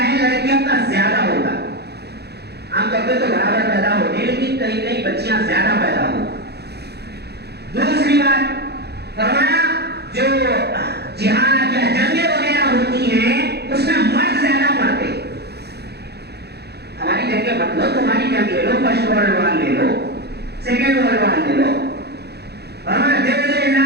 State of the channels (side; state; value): left; late; 0.48 ms